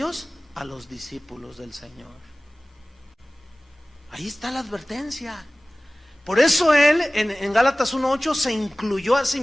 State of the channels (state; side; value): normal; both; correlation 0.98